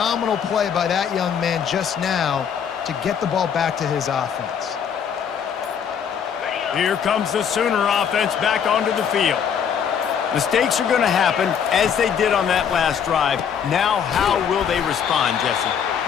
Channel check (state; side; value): quieter; right; 7.7 dB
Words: play by that young man just now to get the ball back to his offense. Here comes the Sooner offense back onto the field. Mistakes are going to happen, as they did on that last drive. Now, how will they respond, Jesse?